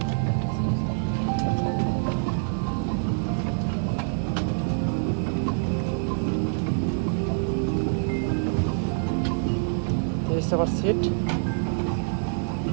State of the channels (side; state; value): left; silent; 61 dB below the other